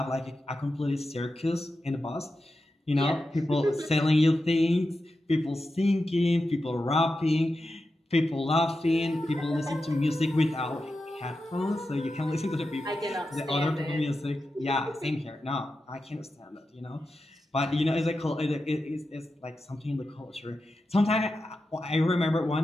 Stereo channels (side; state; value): both; normal; correlation 0.90